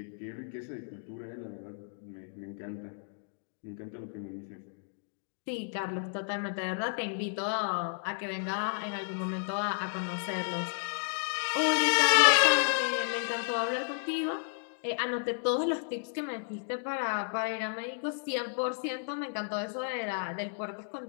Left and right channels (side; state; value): right; silent; digital silence